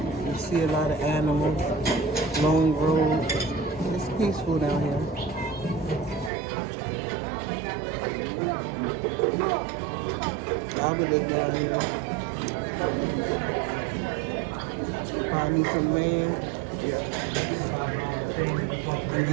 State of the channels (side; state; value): left; drops out; at 6.3 s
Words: you see a lot of animals, long road. It's peaceful down here. I would live down here. Probably need some land and